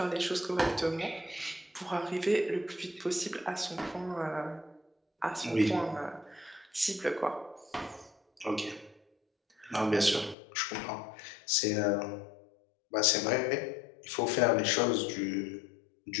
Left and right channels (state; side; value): drops out; right; at 10.4 s